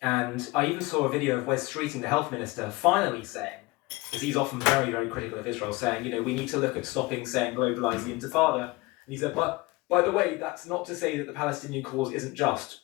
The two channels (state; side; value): quieter; right; 22.8 dB